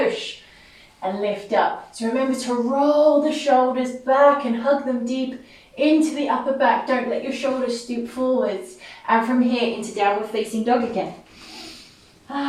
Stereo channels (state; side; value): identical; both; correlation 1.00